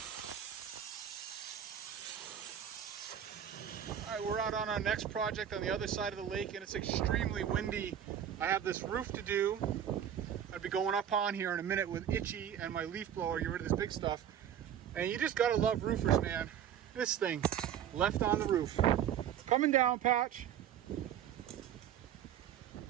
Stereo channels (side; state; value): left; quieter; 9.5 dB